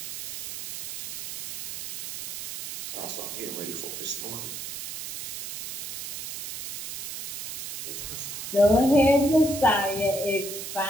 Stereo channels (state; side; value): noise; right; hiss, 5 dB below the sound